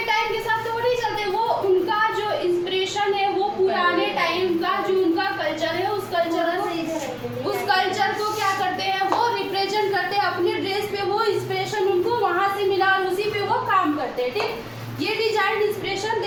टाइम के साथ तो वो नहीं चलते, वो उनका जो इंस्पिरेशन है वो पुराने टाइम का जो उनका कल्चर है, उस कल्चर को क्या करते हैं, वो रिप्रेजेंट करते हैं अपने ड्रेस पे। वो इंस्पिरेशन उनको वहाँ से मिला और उसी पे वो काम करते हैं। ठीक, ये डिजाइन इंस्पिरेशन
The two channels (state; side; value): identical; both; correlation 1.00